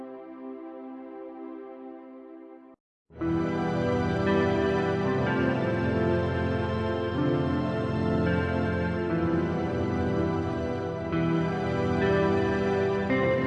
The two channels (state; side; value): identical; both; correlation 1.00